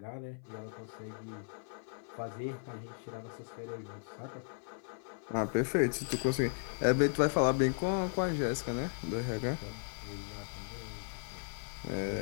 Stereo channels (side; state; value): right; silent; 54 dB below the other